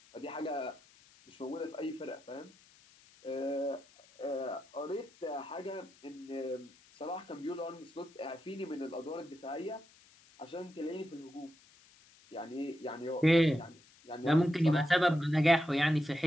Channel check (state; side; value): noise; left; hiss, 27 dB below the sound